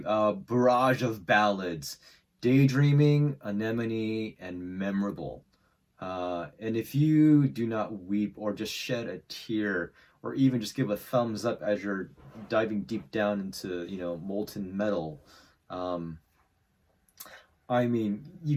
barrage of ballads. Daydreaming, Anemone, and Memorable. And if you do not weep or just shed a tear or even just give a thumbs up as you're diving deep down into molten metal, I mean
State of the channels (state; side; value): identical; both; correlation 1.00